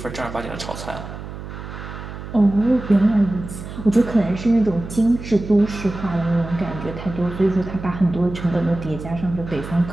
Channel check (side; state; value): right; noise; hum, 10 dB below the sound